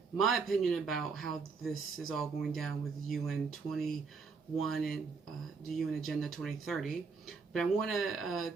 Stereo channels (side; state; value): left; quieter; 5.0 dB